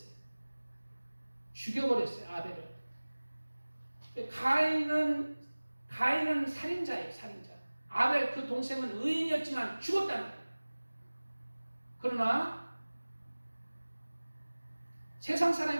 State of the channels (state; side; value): inverted; both; correlation -1.00